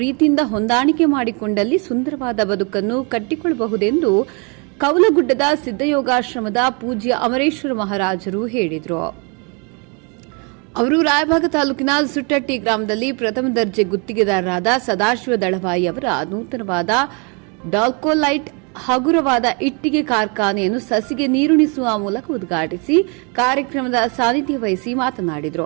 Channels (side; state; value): left; quieter; 33.6 dB